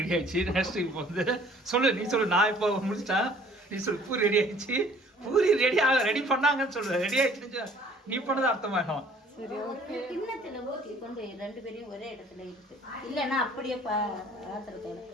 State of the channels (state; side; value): normal; both; correlation 0.55